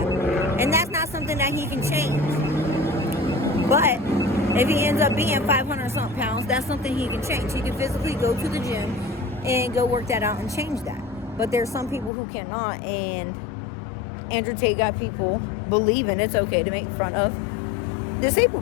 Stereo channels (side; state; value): right; drops out; at 12.1 s